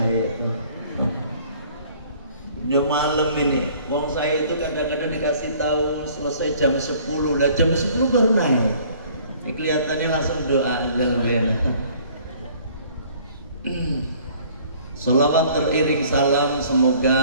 Udah malam ini, wong saya itu kadang-kadang dikasih tahu selesai jam 10, lah jam 10 baru naik. Ini kelihatannya langsung doa aja lebih enak. Salawat teriring salam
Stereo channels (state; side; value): inverted; both; correlation -0.55